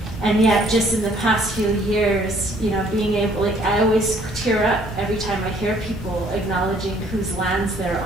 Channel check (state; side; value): normal; both; correlation 0.61